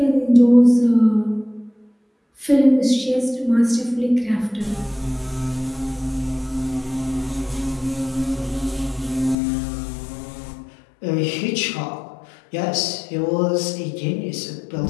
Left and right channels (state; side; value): drops out; right; at 9.3 s